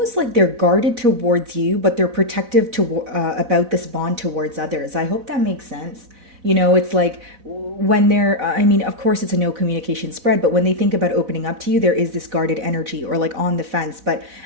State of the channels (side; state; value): left; late; 4.0 ms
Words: like they're guarded towards you, but they're protective about this bond towards others. I hope that makes sense. It's like when they're, of course it's a no communication spread, but when they think about opening up to you, there is this guarded energy or like on the fence. But